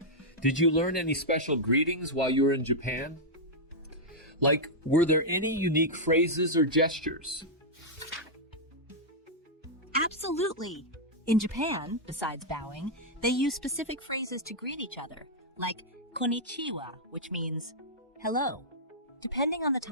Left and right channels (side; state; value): both; normal; correlation -0.06